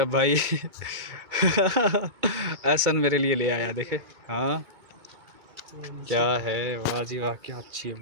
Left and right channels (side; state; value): left; late; 2.3 ms